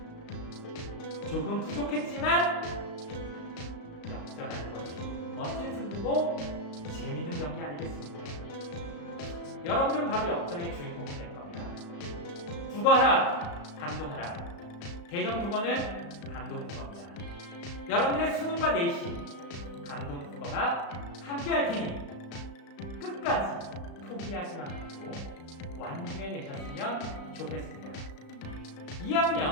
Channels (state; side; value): late; right; 35 ms